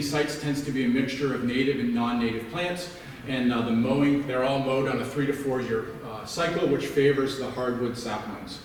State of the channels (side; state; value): both; identical; correlation 1.00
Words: sites tends to be a mixture of native and non-native plants, and the mowing, they're all mowed on a 3 to 4 year cycle, which favors the hardwood saplings.